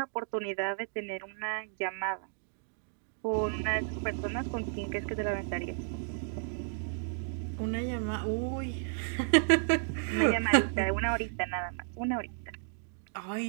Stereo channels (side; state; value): left; silent; digital silence